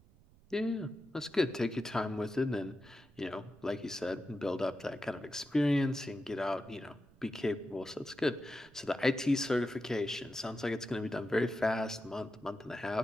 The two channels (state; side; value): noise; right; rumble, 26 dB below the sound